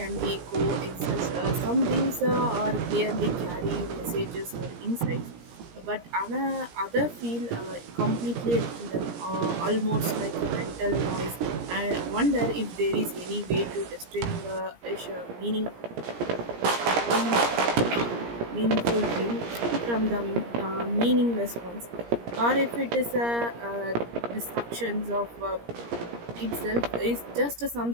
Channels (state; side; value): late; left; 17 ms